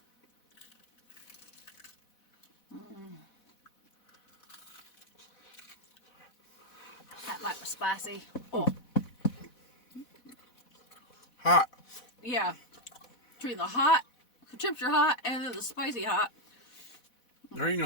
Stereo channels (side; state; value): right; late; 4.1 ms